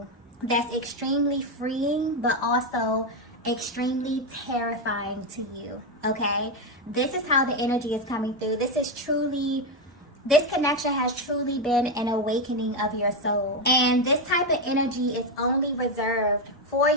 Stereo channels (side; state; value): both; normal; correlation 0.08